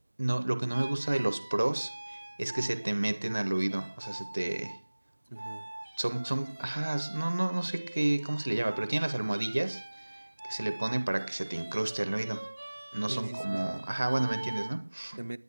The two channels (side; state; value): both; inverted; correlation -1.00